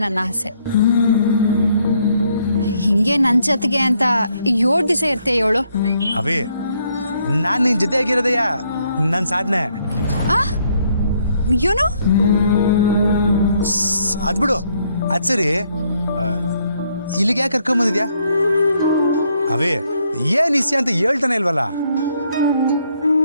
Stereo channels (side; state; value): both; inverted; correlation -0.71